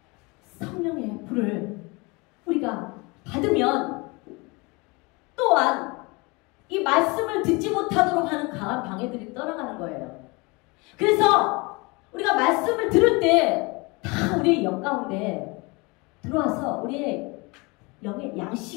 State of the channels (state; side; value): quieter; right; 26.8 dB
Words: 성령의 불을 우리가 받으면 또한 이 말씀을 듣지 못하도록 하는 강한 방해들이 떠나가는 거예요. 그래서 우리가 말씀을 들을 때 다 우리의 영 가운데 들어와서 우리의 영의